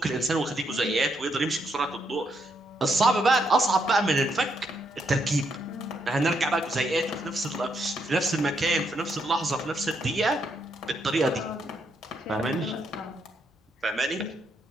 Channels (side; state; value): both; normal; correlation 0.77